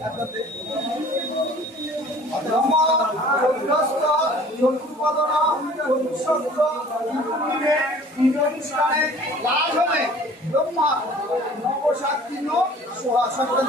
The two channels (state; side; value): normal; both; correlation 0.49